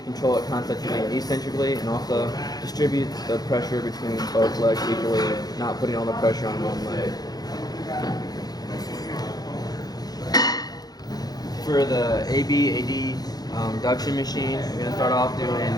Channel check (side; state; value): right; late; 0.19 ms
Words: control it concentrically and eccentrically, and also distribute the pressure between both legs equally, not putting all the pressure on one leg. For the AB duction machine, we're going to start off doing